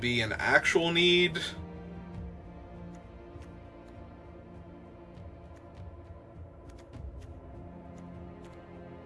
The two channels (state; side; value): identical; both; correlation 1.00